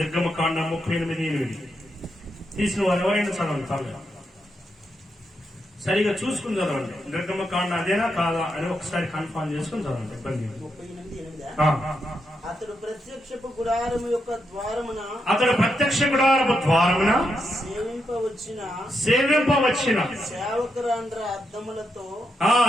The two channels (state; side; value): normal; both; correlation 0.83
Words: 38:8. తీసిన వారు ఎవరైనా చదవండి, పర్లేదు. సరిగా చూసుకుని చదవండి. నిర్గమకాండ అదేనా కాదా అని ఒకసారి కన్ఫర్మ్ చేసుకుని చదవండి, ఇబ్బంది లేదు. 38:8. అతడు ప్రత్యక్షపు గుడారము యొక్క ద్వారమున సేవింపవచ్చిన సేవకురాండ్ర అద్దములతో